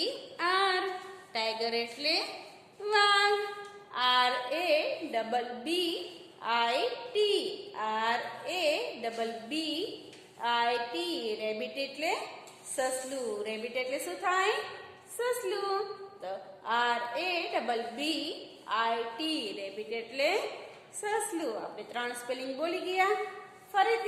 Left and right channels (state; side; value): identical; both; correlation 1.00